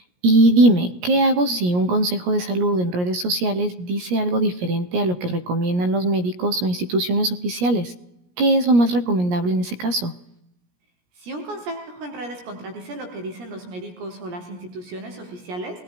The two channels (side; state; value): left; late; 17 ms